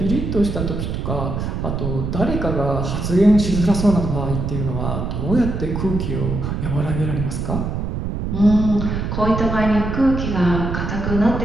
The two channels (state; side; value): noise; right; rumble, 3 dB below the sound